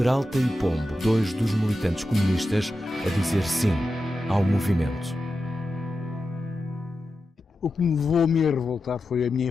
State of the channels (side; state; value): both; normal; correlation 0.90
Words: e Pombo, 2 dos militantes comunistas, a dizer sim ao movimento. O que me levou a me revoltar foi a minha